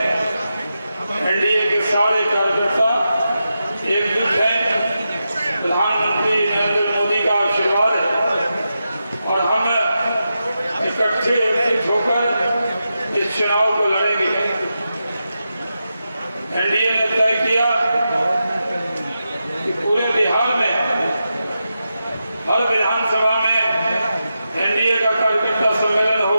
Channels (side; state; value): both; inverted; correlation -0.89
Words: एनडीए के सारे कार्यकर्ता एकजुट हैं। प्रधानमंत्री नरेंद्र मोदी का आशीर्वाद है और हम इकट्ठे एकजुट होकर इस चुनाव को लड़ेंगे। एनडीए ने तय किया कि पूरे बिहार में हर विधानसभा में एनडीए का कार्यकर्ता सम्मेलन